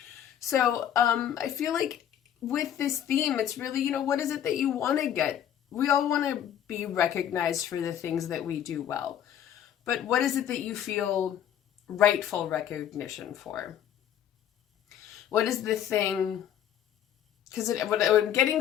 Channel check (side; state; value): right; quieter; 10.1 dB